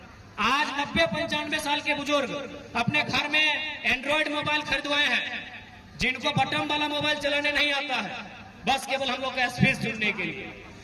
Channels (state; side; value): identical; both; correlation 1.00